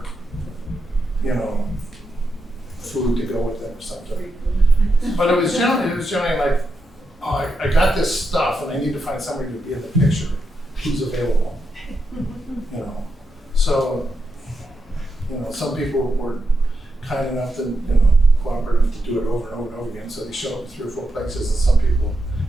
you know, food to go with them or something. But it was generally like, oh, I got this stuff and I need to find somebody to be in the picture who's available. You know, so, you know, some people were kind enough to, you know, cooperative to do it over and over and over again, so they show up 3 or 4 places, and some people,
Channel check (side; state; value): both; normal; correlation 0.85